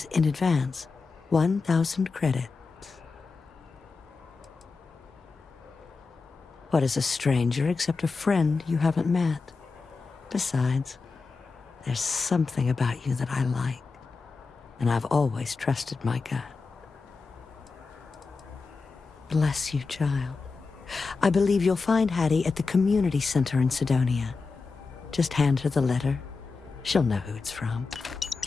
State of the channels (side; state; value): right; quieter; 4.3 dB